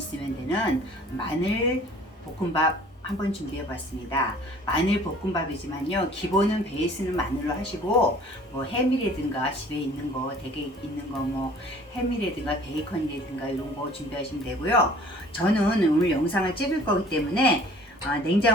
되는 마늘 볶음밥 한번 준비해 봤습니다. 마늘 볶음밥이지만요 기본은 베이스는 마늘로 하시고 뭐 햄이라든가 집에 있는 거 되게 있는 거 뭐 햄이라든가 베이컨이라든가 이런 거 준비하시면 되고요. 저는 오늘 영상을 찍을 거기 때문에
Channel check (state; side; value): normal; both; correlation 0.51